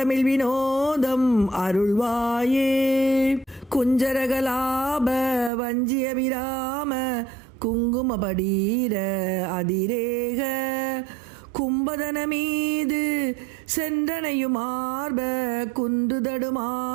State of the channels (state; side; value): drops out; left; at 5.5 s